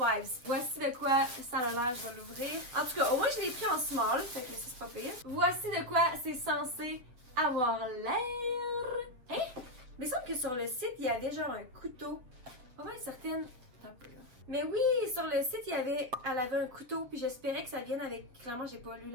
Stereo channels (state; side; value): late; left; 8.2 ms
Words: Voici de quoi ça a l'air, je vais l'ouvrir. En tout cas, au moins je l'ai pris en small, fait que c'est pas pire. Voici de quoi c'est censé avoir l'air. Hein? Mais il semble que sur le site, il y avait genre un couteau. Pas mal certaine. Un peu là. Mais oui, sur le site, elle avait un couteau, puis j'espérais que ça vienne avec... Clairement, j'ai pas lu